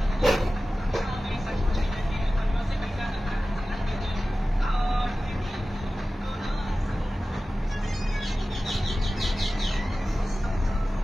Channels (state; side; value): normal; both; correlation 0.96